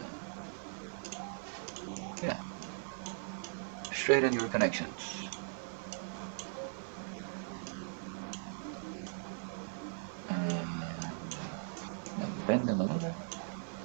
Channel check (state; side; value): silent; left; 52 dB below the other